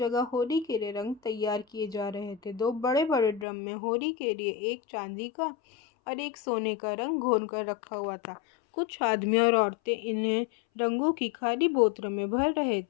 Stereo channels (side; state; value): right; drops out; at 3.5 s